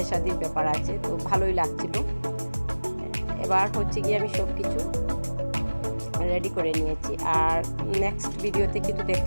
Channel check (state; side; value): inverted; both; correlation -1.00